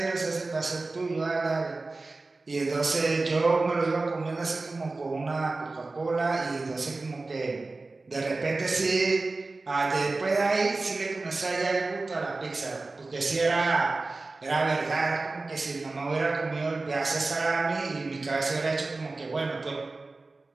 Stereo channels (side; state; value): left; quieter; 3.4 dB